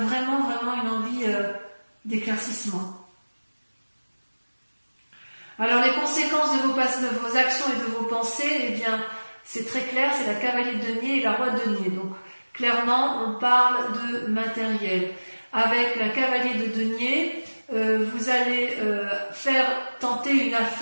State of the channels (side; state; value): both; inverted; correlation -1.00